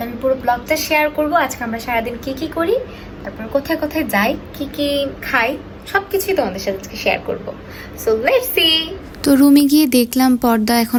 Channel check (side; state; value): both; identical; correlation 1.00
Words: আমি পুরো ব্লগটা শেয়ার করব। আজকে আমরা সারাদিন কি করি, তারপর কোথায় কোথায় যাই, কি খাই, সবকিছুই তোমাদের সাথে আজকে শেয়ার করব। So let's see. তো রুমে গিয়ে দেখলাম পর্দা